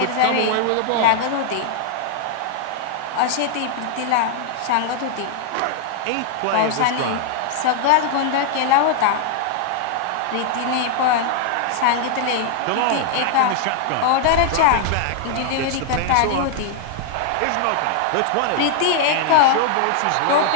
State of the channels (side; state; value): both; different; correlation -0.01